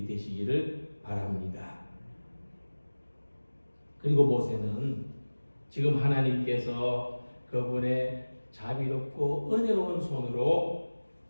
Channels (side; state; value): both; inverted; correlation -1.00